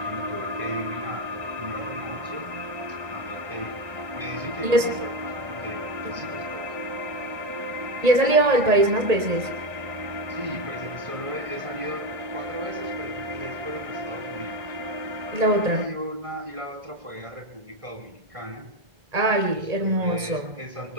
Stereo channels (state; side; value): late; left; 1.9 ms